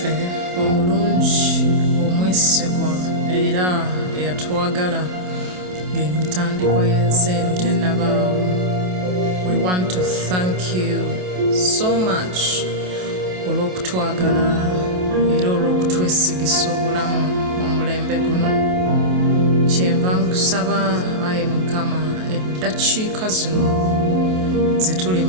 omulungi omwesigwa era eyatwagala ng'emitandikwa y'ensi eno tennabaawo. We want to thank you so much olw'okutwagala era olw'okutwesigisa obulamu mu mulembe guno. Kyenva nkusaba Ayi Mukama, eddakiika zino ze tuli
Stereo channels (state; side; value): late; left; 27 ms